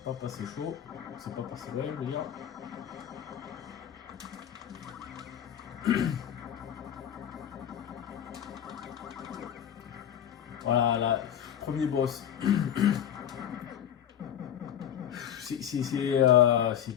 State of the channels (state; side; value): quieter; right; 9.8 dB